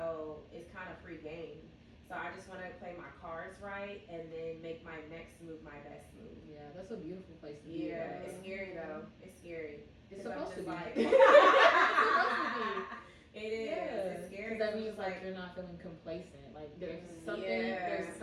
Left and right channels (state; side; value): identical; both; correlation 1.00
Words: it's kind of free game. So I just want to play my cards right and then make my next move my best move. Yeah, that's a beautiful place to be. Yeah, it's scary though. It's scary. It's supposed to be. Like, it's supposed to be. It is. Yeah. It's scary. Because that means like you're not feeling complacent. Like there's something, there's